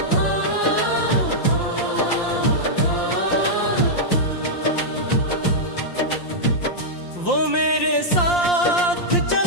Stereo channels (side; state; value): right; late; 5.7 ms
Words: वो मेरे साथ